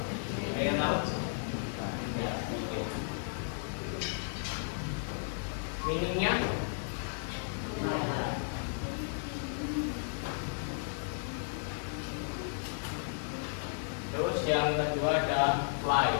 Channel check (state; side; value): silent; right; 55 dB below the other